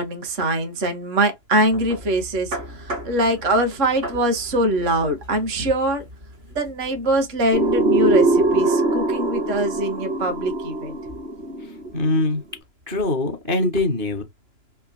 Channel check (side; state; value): left; late; 2.9 ms